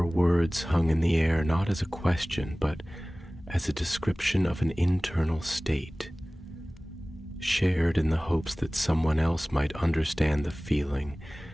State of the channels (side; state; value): both; normal; correlation 0.98